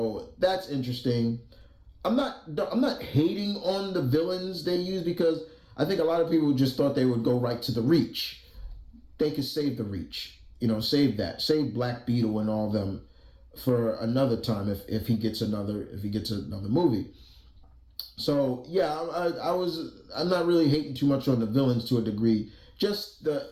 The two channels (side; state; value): both; identical; correlation 1.00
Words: that's interesting. I'm not hating on the villains they use, because I think a lot of people just thought they would go right to the Reach. They could save the Reach, save that, save Black Beetle and all them for another time if he gets another movie. So yeah, I'm not really hating too much on the villains to a degree. Just